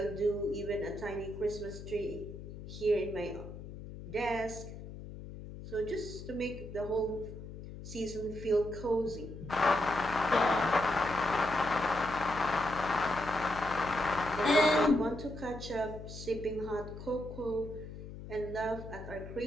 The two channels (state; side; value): noise; left; hum, 12 dB below the sound